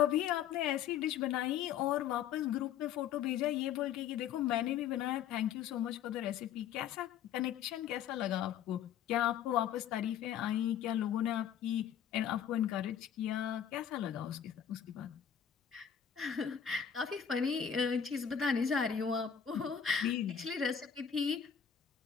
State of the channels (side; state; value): right; quieter; 8.7 dB